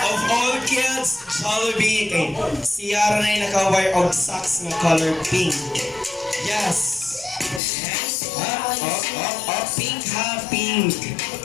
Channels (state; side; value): drops out; right; at 7.6 s